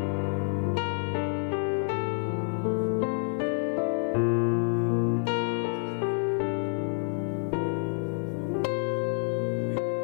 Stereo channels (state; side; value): silent; right; 57 dB below the other